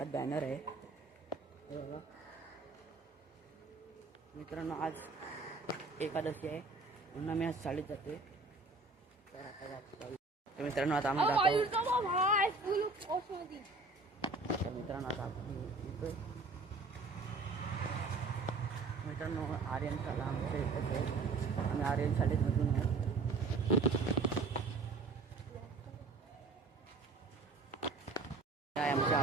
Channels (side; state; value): left; quieter; 3.7 dB